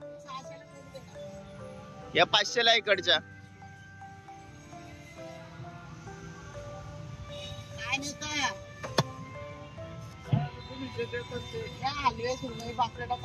या 500 ला इकडच्या। हलवे सुरमई पापलेटा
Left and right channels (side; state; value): both; identical; correlation 1.00